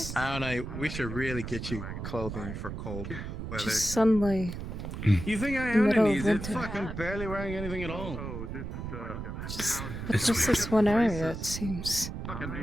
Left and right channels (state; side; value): noise; right; rumble, 7 dB below the sound